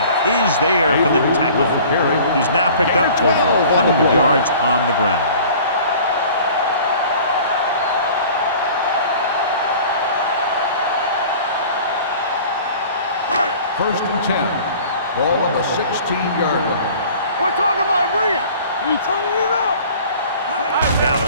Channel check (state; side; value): inverted; both; correlation -0.46